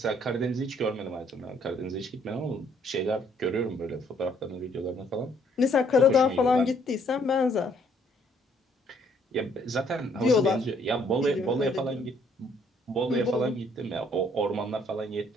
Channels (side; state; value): both; normal; correlation 0.65